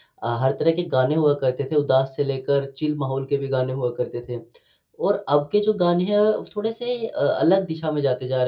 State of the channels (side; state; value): both; identical; correlation 1.00